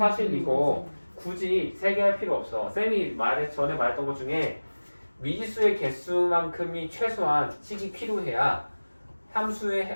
이거 굳이 세 개 할 필요 없어. 쌤이 전에 말했던 것 중에 미지수의 개수만큼이 최소한 식이 필요해야 함수의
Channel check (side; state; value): both; inverted; correlation -1.00